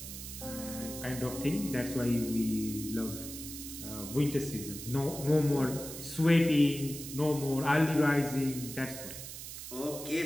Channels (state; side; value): noise; right; hiss, 10 dB below the sound